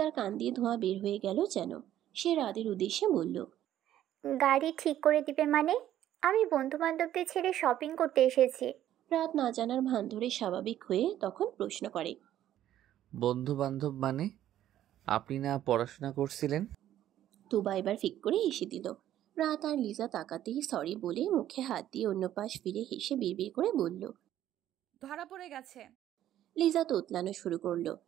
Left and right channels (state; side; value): quieter; left; 12.1 dB